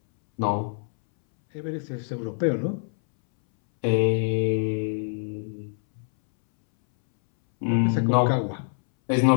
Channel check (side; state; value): right; silent; 62 dB below the other